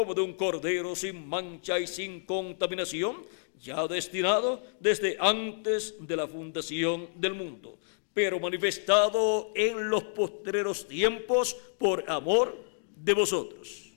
de un cordero sin mancha y sin contaminación, ya destinado desde antes de la fundación del mundo, pero manifestado en los postreros tiempos por amor de vosotros.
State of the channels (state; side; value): silent; right; digital silence